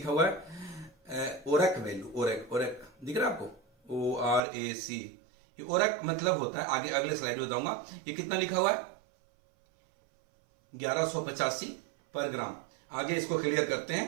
हुआ है ओरक वैल्यू, ओरक दिख रहा है आपको, ORAC। ओरक मतलब होता है, आगे अगले स्लाइड में बताऊंगा। ये कितना लिखा हुआ है? 1185 पर ग्राम। आगे इसको क्लियर करते हैं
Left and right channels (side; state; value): left; drops out; at 4.4 s